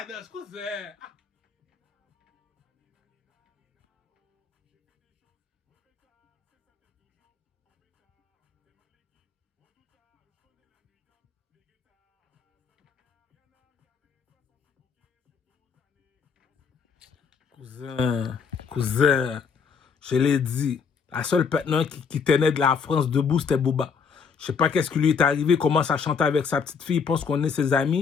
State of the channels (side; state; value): right; quieter; 6.0 dB